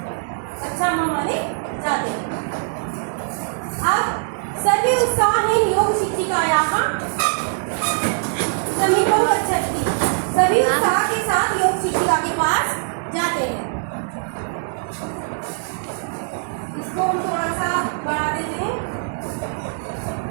अच्छा हमारे जाते हैं। अब सर्वे उत्साहेन योग शिक्षिकायाः समीपं गच्छन्ति, सभी उत्साह के साथ योग शिक्षिका के पास जाते हैं। इसको हम थोड़ा सा बढ़ा देते हैं।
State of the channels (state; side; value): silent; left; digital silence